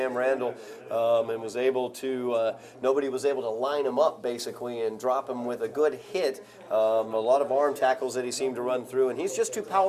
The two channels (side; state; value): both; identical; correlation 1.00